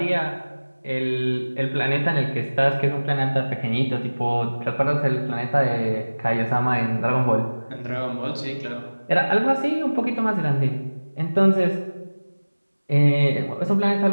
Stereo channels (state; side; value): inverted; both; correlation -1.00